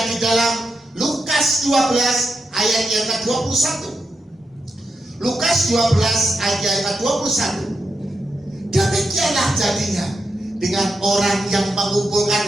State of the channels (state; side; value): normal; both; correlation 0.86